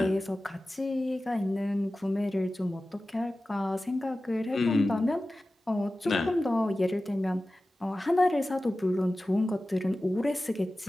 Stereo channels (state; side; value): normal; both; correlation 0.95